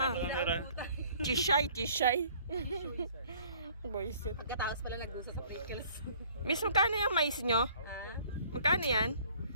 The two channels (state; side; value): inverted; both; correlation -0.55